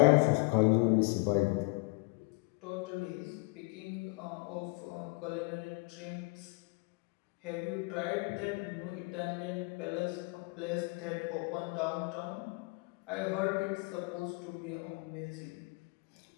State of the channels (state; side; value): quieter; right; 28.5 dB